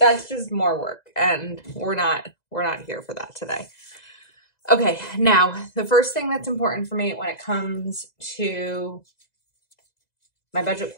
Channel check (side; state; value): right; late; 2.0 ms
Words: just more work and we're not here for that today. Okay, now the first thing that's important for me when it comes to my budget